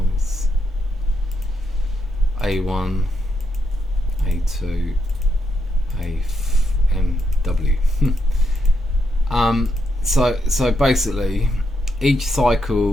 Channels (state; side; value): normal; both; correlation 0.80